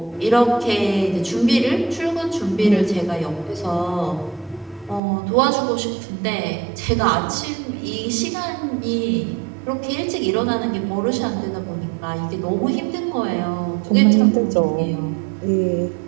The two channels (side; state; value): left; drops out; at 5.0 s